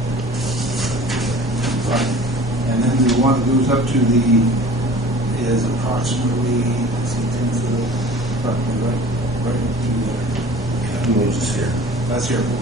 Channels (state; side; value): normal; both; correlation 0.44